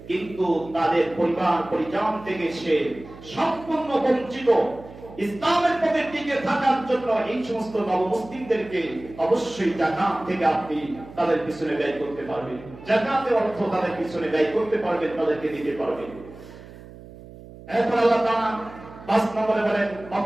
কিন্তু তাদের পরিবার পরিজন থেকে সে সম্পূর্ণ বঞ্চিত, ইসলামের পথে টিকে থাকার জন্য এই সমস্ত নবমুসলিমদেরকে অবশ্যই যাকাত থেকে আপনি তাদের পিছনে ব্যয় করতে পারবেন। যাকাতের অর্থ তাদের পিছনে ব্যয় করতে পারবেন, তাদেরকে দিতে পারবেন। এরপর আল্লাহ তাআলা 5 নম্বরে বলেন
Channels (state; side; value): noise; right; hum, 17 dB below the sound